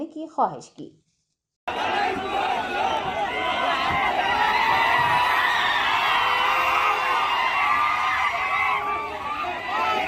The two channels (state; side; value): identical; both; correlation 1.00